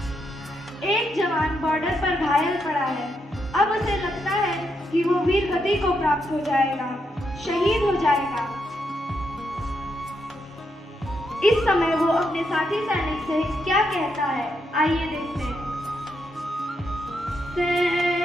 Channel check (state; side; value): normal; both; correlation 0.80